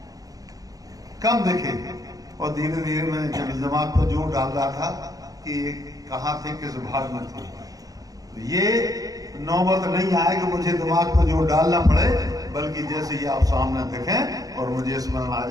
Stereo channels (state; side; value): late; left; 0.17 ms